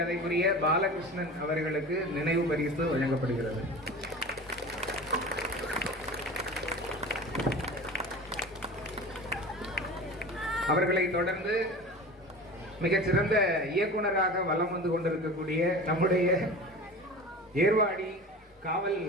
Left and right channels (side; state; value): both; normal; correlation 0.35